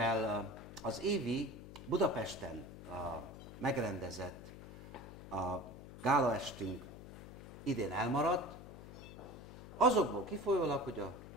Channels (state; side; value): noise; left; hum, 13 dB below the sound